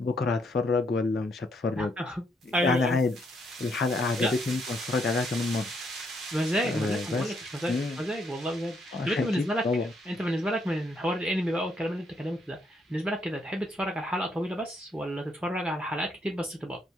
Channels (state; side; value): normal; both; correlation 0.73